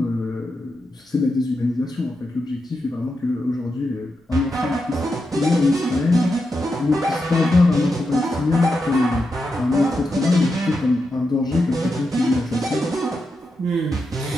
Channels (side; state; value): both; normal; correlation 0.87